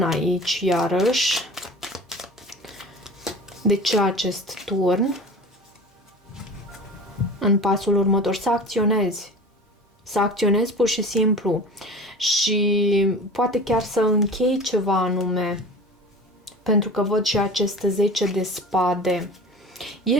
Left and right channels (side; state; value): both; normal; correlation 0.36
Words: aici, iarăși. De ce acest turn? În pasul următor, să acționezi. Să acționezi pur și simplu. Și poate chiar să închei ceva anume. Pentru că văd și acest 10 de spade. E